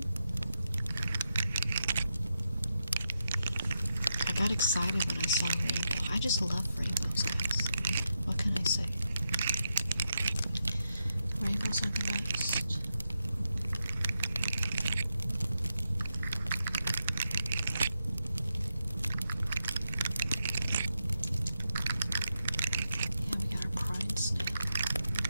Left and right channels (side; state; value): both; inverted; correlation -0.86